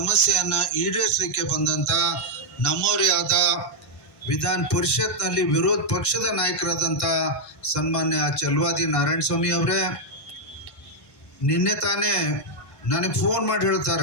ಈಡೇರಿಸಲಿಕ್ಕೆ ಬಂದಂತ ನಮ್ಮವರೇ ಆದ ವಿಧಾನ ಪರಿಷತ್ನಲ್ಲಿ ವಿರೋಧ ಪಕ್ಷದ ನಾಯಕರಾದಂಥ ಸನ್ಮಾನ್ಯ ಚಲವಾದಿ ನಾರಾಯಣಸ್ವಾಮಿ ಅವರೇ, ನಿನ್ನೆ ತಾನೇ ನನಗೆ ಫೋನ್ ಮಾಡಿ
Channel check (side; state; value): right; late; 1.5 ms